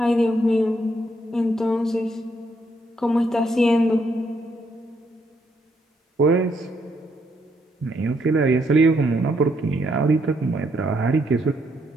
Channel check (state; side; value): normal; both; correlation 0.74